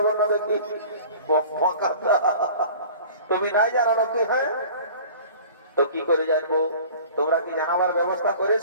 বল না দেখি। তুমি নাই জানো নাকি? হ্যাঁ, তো কি করে জানবো? তোমরা কি জানাবার ব্যবস্থা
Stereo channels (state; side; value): inverted; both; correlation -0.44